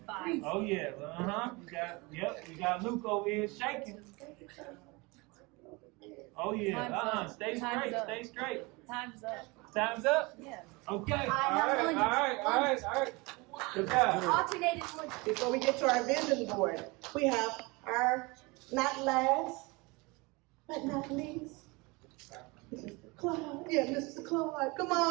Oh yeah, you got Luke over here shaking. Oh yeah, stay straight. Time's up. Time's up? Yeah. Okay, all right. Good job. Alternating lunch. Before we get to our vision board, we have our not last, but not least, Mr. Clyde. Yeah, Mr. Clyde. Come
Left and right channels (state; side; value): quieter; left; 25.7 dB